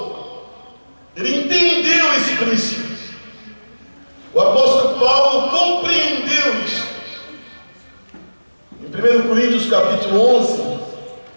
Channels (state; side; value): inverted; both; correlation -1.00